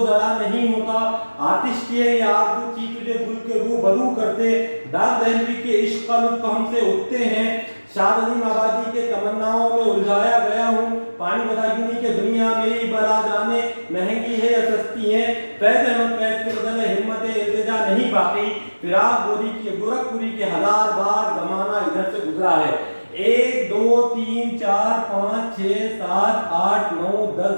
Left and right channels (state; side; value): inverted; both; correlation -1.00